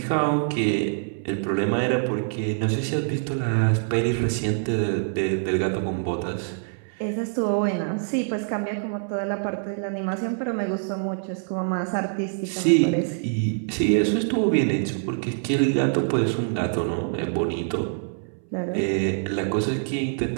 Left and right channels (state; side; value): silent; left; 62 dB below the other